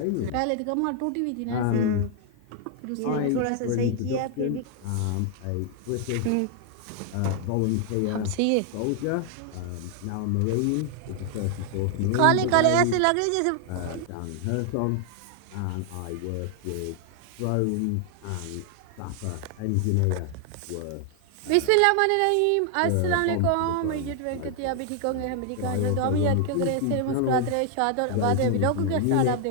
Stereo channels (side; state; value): both; different; correlation 0.00